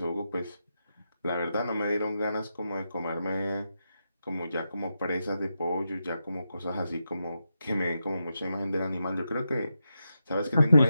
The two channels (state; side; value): inverted; both; correlation -0.87